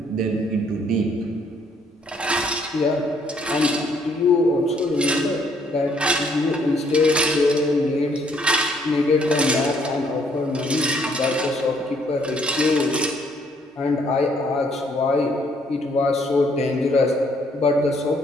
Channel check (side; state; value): both; normal; correlation 0.66